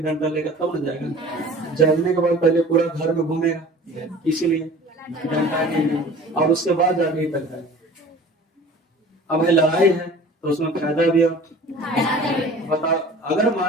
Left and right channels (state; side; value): normal; both; correlation 0.44